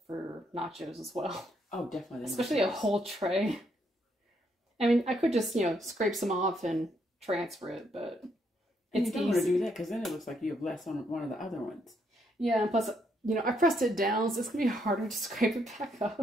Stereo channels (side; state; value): both; normal; correlation 0.74